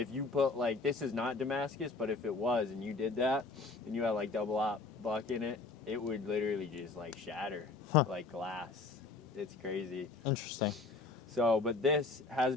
you put like, this is not Damascus, but if it was and you did that and you had like double-aught buck in it, it would literally just like shatter like glass. It's crazy. Interesting. So, but this has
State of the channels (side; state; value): right; quieter; 3.9 dB